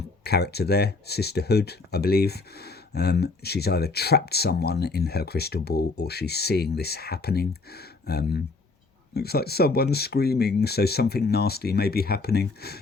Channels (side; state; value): right; quieter; 3.8 dB